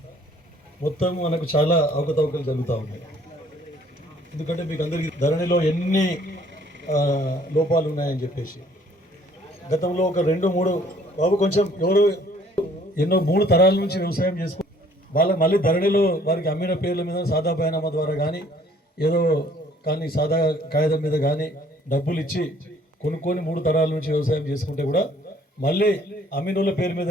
మొత్తం మనకు చాలా అవకతవకలు జరుగుతూ ఉన్నాయి. ఎందుకంటే మీకు అందరికీ ధరణిలో ఎన్ని లోపాలు ఉన్నాయని చెప్పేసి గతంలో ఒక 2-3 బాబు కొంచెం ఎవరు ఎన్నో 3 తరాల నుంచి వ్యవసాయం చేసుకు వాళ్ళకి మళ్ళీ ధరణిలో వారికి అమ్మిన పేర్ల మీద సాదా బైనామా ద్వారా కానీ ఏదో కానీ సాదా కాగితం మీద కానీ డబ్బులు ఇచ్చి కొనుక్కొని 3 తరాల నుంచి వ్యవసాయం చేసుకుంటే కూడా మళ్ళీ అమ్మినోళ్ళ పేరు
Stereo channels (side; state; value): both; normal; correlation 0.59